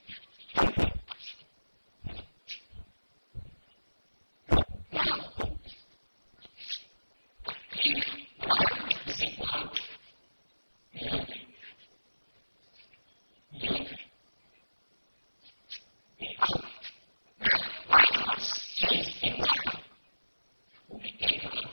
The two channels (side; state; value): both; inverted; correlation -1.00